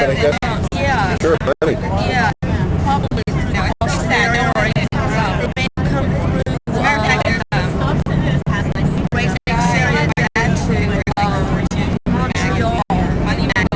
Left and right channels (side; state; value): both; identical; correlation 1.00